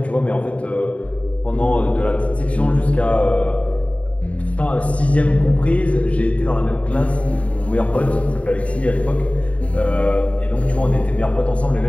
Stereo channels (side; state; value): right; late; 0.065 ms